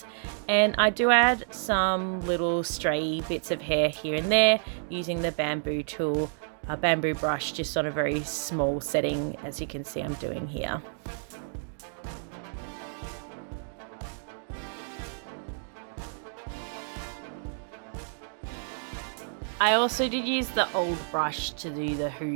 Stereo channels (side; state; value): left; silent; digital silence